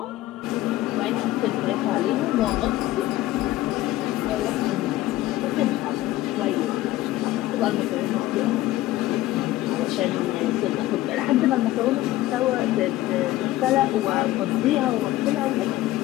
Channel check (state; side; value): quieter; right; 15.9 dB